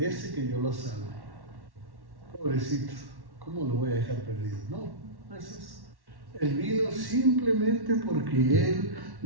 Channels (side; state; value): left; late; 1.1 ms